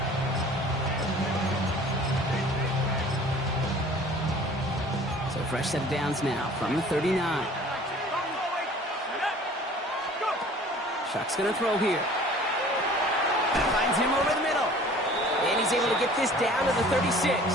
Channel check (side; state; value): both; normal; correlation 0.48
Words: So fresh set of downs now from the 39. Shuck's going to throw here. Finds him over the middle. And he's able to get this down to the 36.